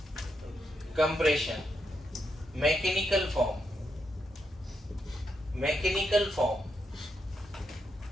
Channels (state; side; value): normal; both; correlation 0.81